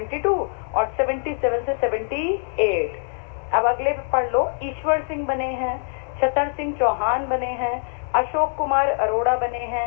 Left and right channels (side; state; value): right; silent; digital silence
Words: और 77 से 78। अब अगले पे पढ़ लो, ईश्वर सिंह बने हैं, छतर सिंह चौहान बने हैं, अशोक कुमार अरोड़ा बने